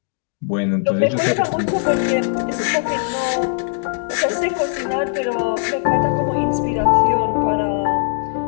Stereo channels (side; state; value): right; silent; digital silence